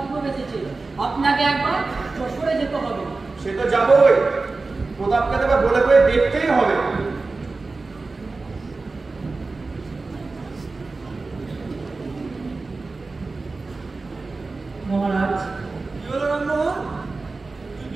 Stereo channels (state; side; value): quieter; left; 3.7 dB